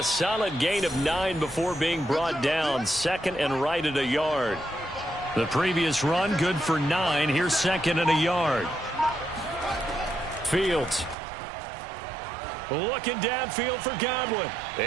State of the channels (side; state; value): left; drops out; at 11.2 s